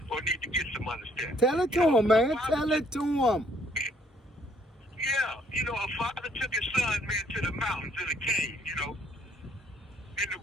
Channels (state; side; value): normal; both; correlation 0.65